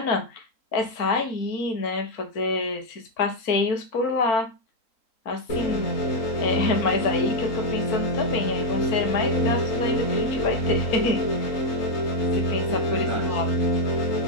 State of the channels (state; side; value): late; right; 3.7 ms